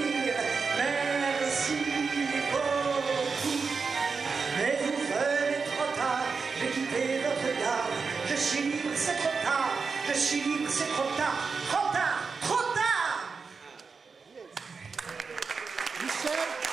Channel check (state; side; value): quieter; left; 5.0 dB